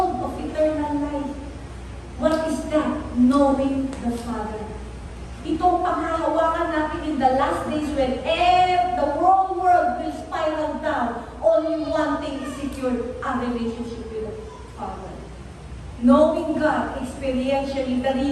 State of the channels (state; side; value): identical; both; correlation 1.00